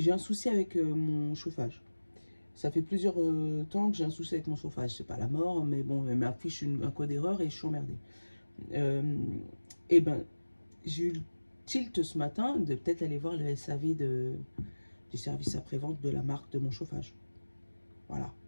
un souci avec mon chauffage. Ça fait plusieurs temps que j'ai un souci avec mon chauffage. C'est pas la mort, mais bon, elle m'affiche un code d'erreur et je suis emmerdée. Et ben, j'ai eu le tilt ce matin de peut-être aller voir le SAV du service après-vente de la marque de mon chauffage. Voilà.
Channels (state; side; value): inverted; both; correlation -1.00